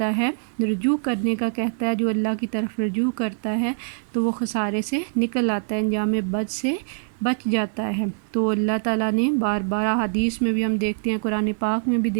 ہے، رجوع کرنے کا کہتا ہے، جو اللہ کی طرف رجوع کرتا ہے تو وہ خسارے سے نکل آتا ہے، انجام بد سے بچ جاتا ہے۔ تو اللہ تعالیٰ نے بار بار حدیث میں بھی ہم دیکھتے ہیں، قرآن پاک میں بھی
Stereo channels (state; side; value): silent; left; 60 dB below the other